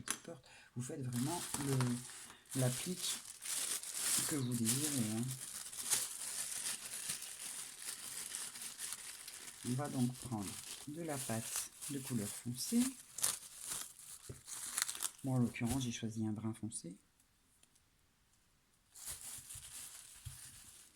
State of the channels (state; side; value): identical; both; correlation 1.00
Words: porte. Vous faites vraiment l'applique que vous désirez. Hein. On va donc prendre de la pâte de couleur foncée. Bon, en l'occurrence, j'ai choisi un brun foncé.